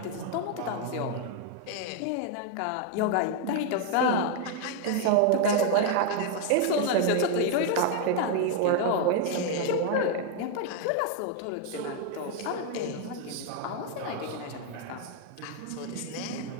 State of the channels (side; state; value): both; different; correlation 0.01